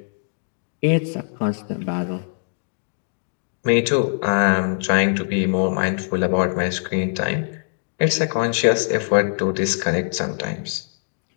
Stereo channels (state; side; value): silent; right; digital silence